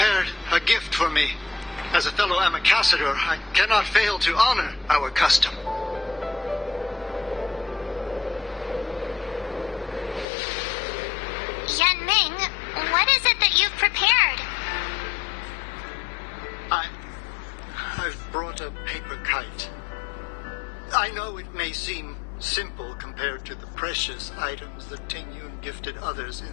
a gift for me. As a fellow ambassador, I cannot fail to honor our custom. Yan Ming, what is it that you've prepared? I've brought a paper kite. I know it may seem simple compared to the precious items that Ting Yun gifted others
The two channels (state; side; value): drops out; right; at 10.2 s